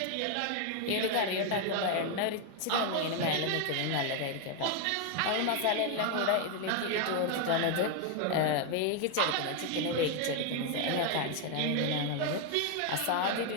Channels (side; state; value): both; different; correlation 0.01